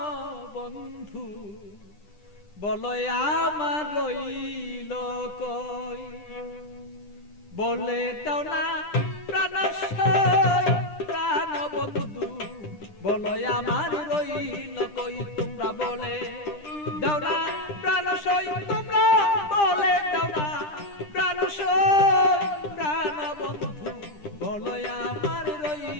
বন্ধু, বলো আমার রইল কই। বলে দাও না প্রাণ প্রাণ বন্ধু, বলো আমার রইল কই। তোমরা বলে দাও না প্রাণ তোমরা বলে দাও না প্রাণ প্রাণ বন্ধু, বলো আমার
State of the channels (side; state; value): right; late; 10 ms